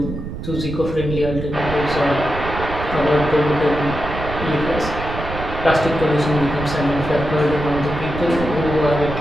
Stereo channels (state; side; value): noise; right; rumble, 8 dB below the sound